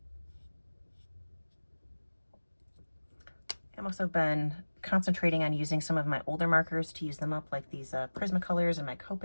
I've also been concentrating on using some of my older markers to use them up, like these Prismacolors and my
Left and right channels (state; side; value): inverted; both; correlation -1.00